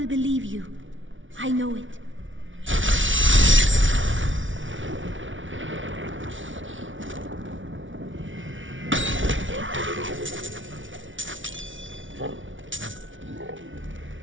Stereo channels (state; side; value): late; left; 0.56 ms